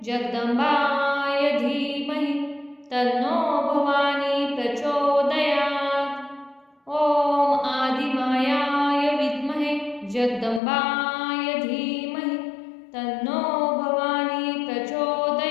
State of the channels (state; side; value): drops out; right; at 10.6 s